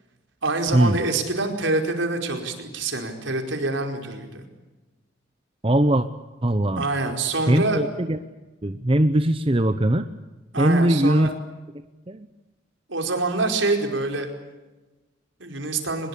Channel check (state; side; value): normal; both; correlation 0.55